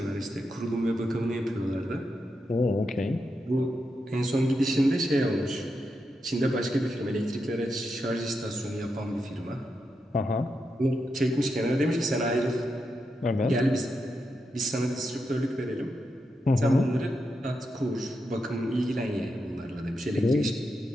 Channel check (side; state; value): both; normal; correlation 0.85